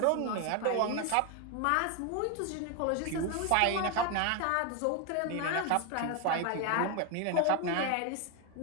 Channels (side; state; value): both; different; correlation 0.01